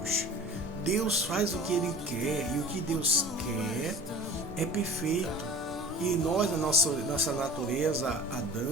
Deus faz o que ele quer, e o que Deus quer é perfeito. E nós, a nossa natureza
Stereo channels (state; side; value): normal; both; correlation 0.40